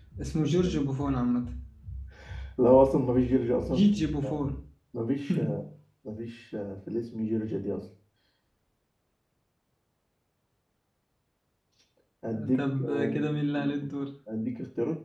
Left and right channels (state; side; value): identical; both; correlation 1.00